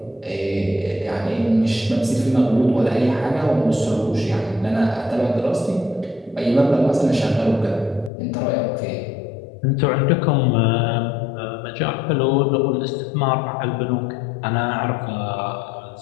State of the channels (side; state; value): right; drops out; at 8.1 s